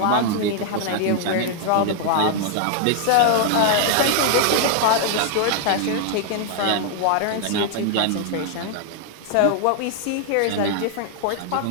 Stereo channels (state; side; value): different; both; correlation 0.00